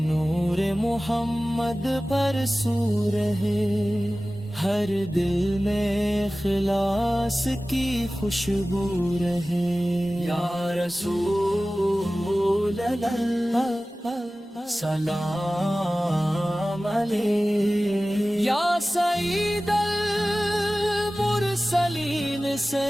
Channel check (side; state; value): both; normal; correlation 0.97